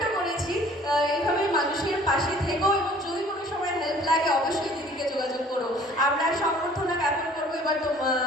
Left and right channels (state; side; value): normal; both; correlation 0.52